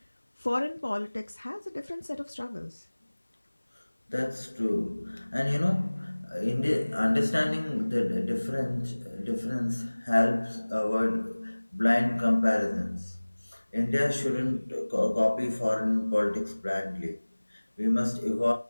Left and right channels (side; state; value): both; inverted; correlation -1.00